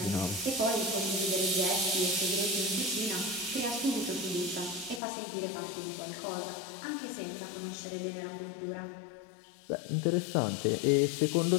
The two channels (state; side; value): drops out; right; at 5.0 s